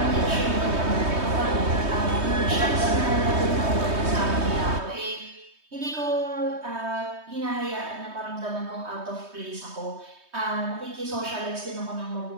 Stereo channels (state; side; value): late; left; 3.2 ms